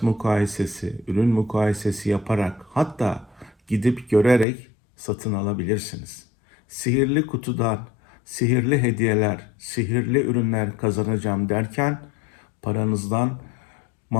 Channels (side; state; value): right; drops out; at 4.5 s